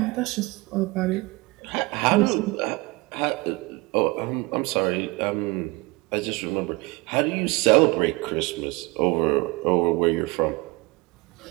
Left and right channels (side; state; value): left; quieter; 24.3 dB